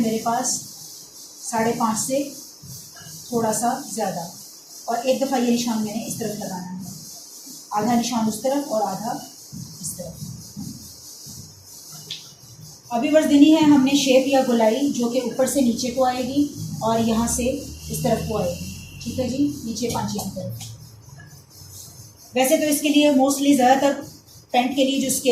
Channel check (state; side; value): identical; both; correlation 1.00